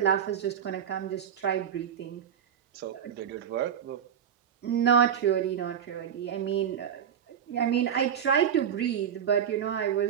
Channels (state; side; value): quieter; left; 8.5 dB